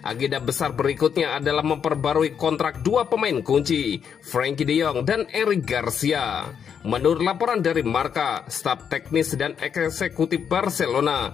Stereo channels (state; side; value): quieter; right; 7.6 dB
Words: Agenda besar berikutnya adalah memperbarui kontrak dua pemain kunci, Frenkie de Jong dan Eric Garcia. Menurut laporan dari Marca, staf teknis dan eksekutif Barcelona